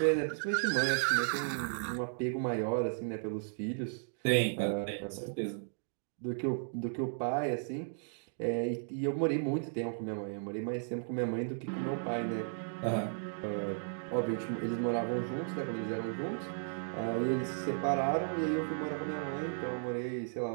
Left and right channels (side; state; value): left; silent; digital silence